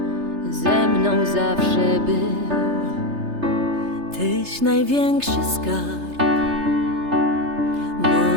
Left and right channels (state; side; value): late; left; 3.3 ms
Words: ze mną zawsze był. Tyś największy skarb